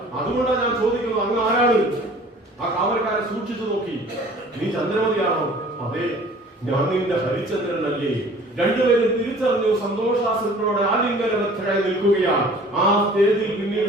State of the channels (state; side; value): normal; both; correlation 0.49